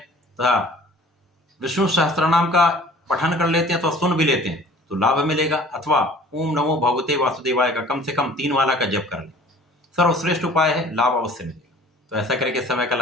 विष्णु सहस्त्रनाम का पठन कर लेते हैं तो सुन भी लेते हैं तो लाभ मिलेगा। अथवा ओम नमो भगवते वासुदेवाय का कम से कम 3 माला का जप कर लें, सर्वश्रेष्ठ उपाय है, लाभ अवश्य मिलेगा। तो ऐसा करके समय का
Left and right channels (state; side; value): normal; both; correlation 0.49